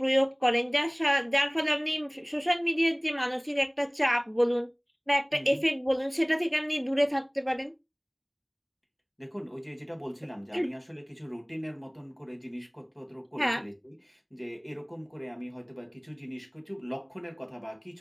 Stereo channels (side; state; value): both; identical; correlation 1.00